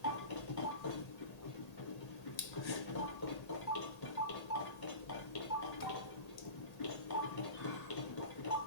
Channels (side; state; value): right; late; 1.8 ms